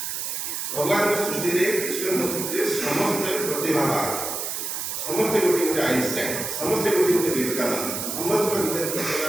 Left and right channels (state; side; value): noise; right; hiss, 4 dB below the sound